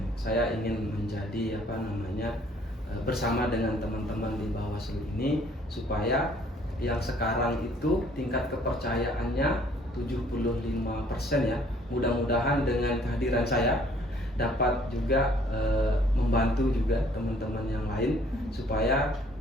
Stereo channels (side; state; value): both; normal; correlation 0.60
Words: Saya ingin menjadi bersama dengan teman-teman di Bawaslu ini supaya yang sekarang itu tingkat kepercayaannya 75% ya. Mudah-mudahan dengan kehadiran saya dapat juga membantu juga teman-teman yang lain supaya